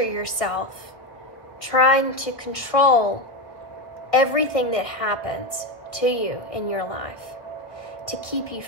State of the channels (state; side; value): late; right; 1.2 ms